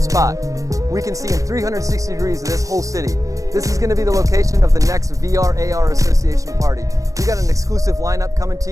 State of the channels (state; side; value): late; left; 0.16 ms